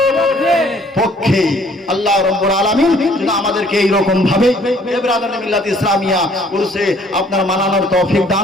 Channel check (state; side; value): normal; both; correlation 0.59